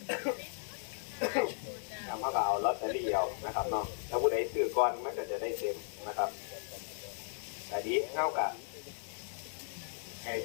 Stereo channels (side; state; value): right; silent; 54 dB below the other